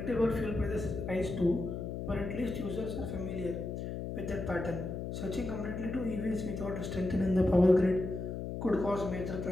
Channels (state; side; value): noise; left; hum, 5 dB below the sound